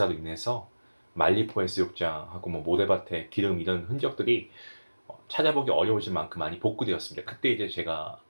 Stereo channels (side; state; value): both; inverted; correlation -1.00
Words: 인해서 말리포 해수욕장하고 뭐 모래밭에 기름 이런 흔적들이 찾아보기 어려워질 만큼 많이 복구되었습니다. 그때 이제 제가